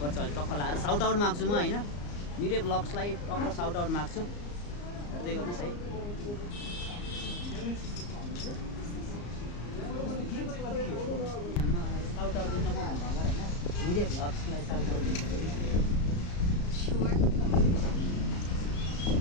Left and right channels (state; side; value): late; right; 34 ms